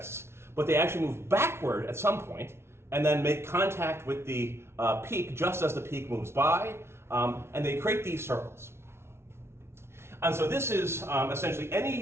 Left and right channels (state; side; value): late; left; 0.12 ms